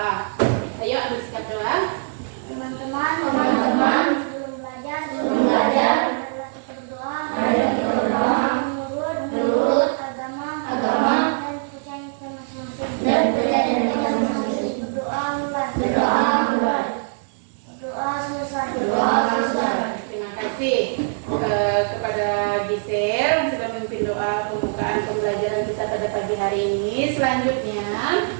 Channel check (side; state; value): left; silent; digital silence